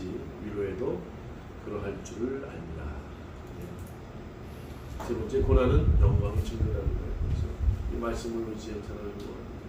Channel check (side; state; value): both; identical; correlation 1.00